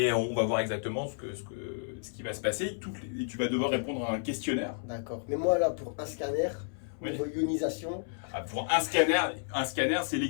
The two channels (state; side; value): silent; right; 57 dB below the other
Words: on va voir exactement ce qui va se passer. Et tu vas devoir répondre à un questionnaire. D'accord. Mais moi là, pour un scanner, niveau ionisation. Pour un scanner, c'est